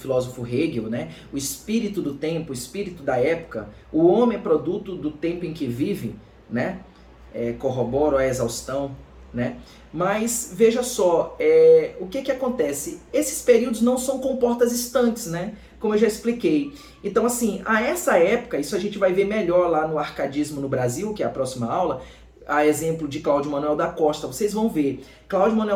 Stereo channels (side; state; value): both; identical; correlation 1.00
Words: Hegel, né, o espírito do tempo, o espírito da época, o homem é produto do tempo em que vive, né, corroboro a exaustão, né, mas veja só, o que acontece? Esses períodos não são comportas estanques, né, como eu já expliquei. Então, assim, a essa época, isso a gente vai ver melhor lá no Arcadismo no Brasil, que é a próxima aula, a exemplo de Cláudio Manuel da Costa. Vocês vão ver, Cláudio